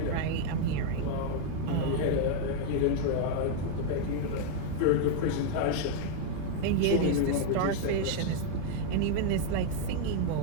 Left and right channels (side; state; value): both; different; correlation -0.01